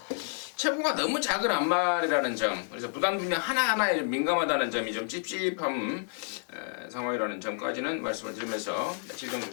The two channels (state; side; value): silent; right; 56 dB below the other